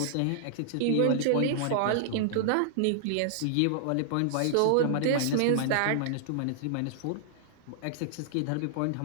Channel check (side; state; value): both; different; correlation -0.01